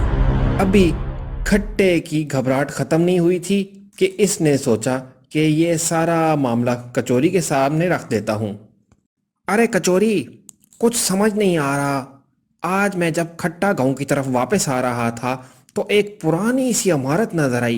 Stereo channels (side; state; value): both; identical; correlation 1.00